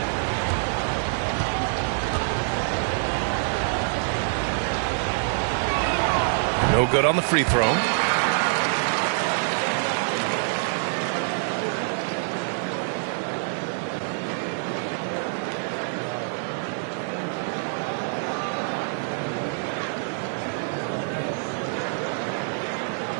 No good on the free throw.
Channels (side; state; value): left; silent; digital silence